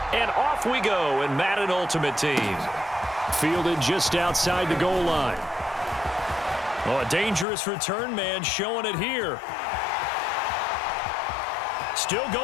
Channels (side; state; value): right; drops out; at 7.5 s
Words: And off we go in Madden Ultimate Team. Fielded just outside the goal line. Oh, a dangerous return man showing it here. Still